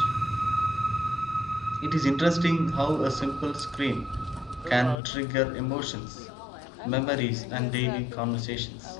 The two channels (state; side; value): drops out; right; at 5.0 s